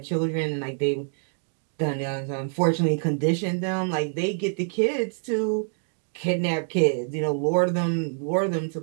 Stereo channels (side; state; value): left; silent; 61 dB below the other